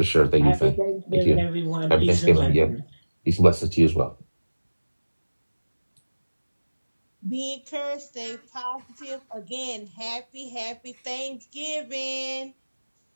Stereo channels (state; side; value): inverted; both; correlation -1.00